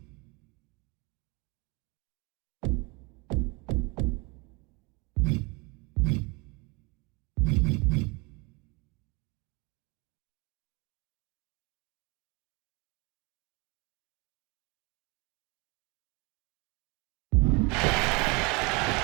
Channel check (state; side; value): quieter; left; 28.4 dB